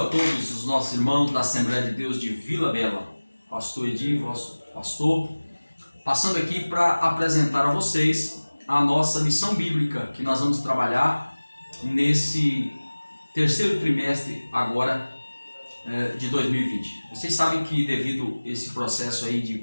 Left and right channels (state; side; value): inverted; both; correlation -1.00